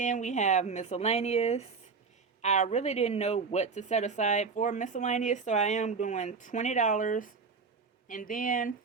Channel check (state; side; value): quieter; left; 5.0 dB